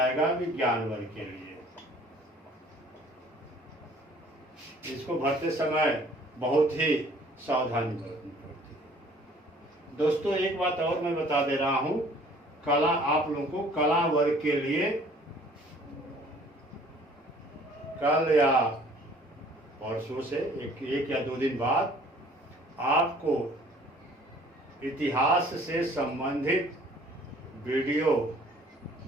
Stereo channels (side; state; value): both; normal; correlation 0.54